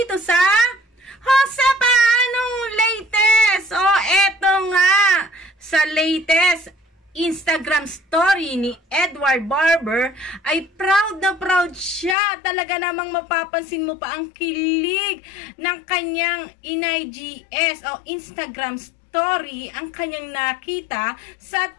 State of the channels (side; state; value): right; drops out; at 12.2 s